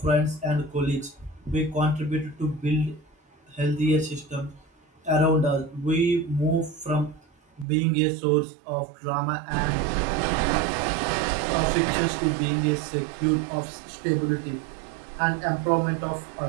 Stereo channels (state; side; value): drops out; left; at 7.7 s